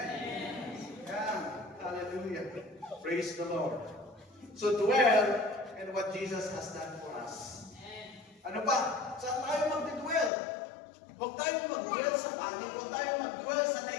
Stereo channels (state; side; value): drops out; right; at 10.3 s